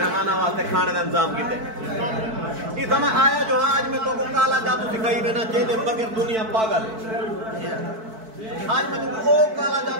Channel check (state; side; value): late; left; 4.5 ms